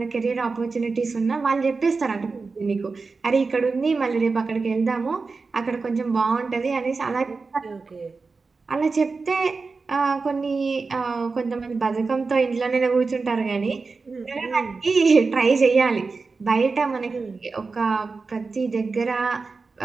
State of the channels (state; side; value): quieter; left; 4.3 dB